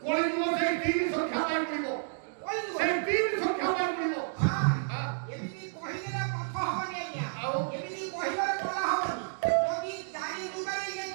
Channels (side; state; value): left; silent; digital silence